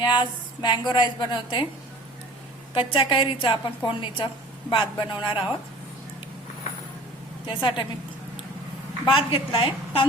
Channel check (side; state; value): both; normal; correlation 0.45